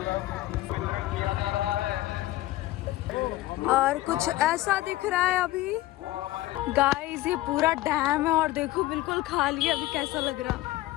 और कुछ ऐसा दिख रहा है अभी। गाइस ये पूरा डैम है और देखो बिल्कुल खाली है, अभी कैसा लग रहा।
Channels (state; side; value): quieter; right; 16.9 dB